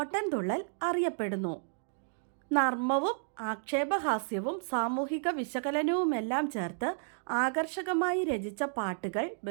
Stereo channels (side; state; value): left; silent; digital silence